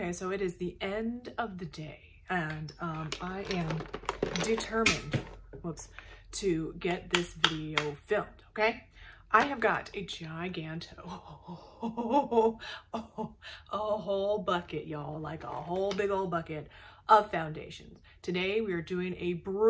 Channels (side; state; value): both; identical; correlation 1.00